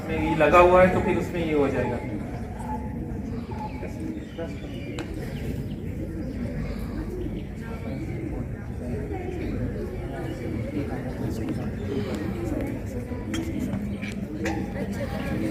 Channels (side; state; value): both; identical; correlation 1.00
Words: में ये लगा हुआ है तो फिर उसमें ये हो जाएगा।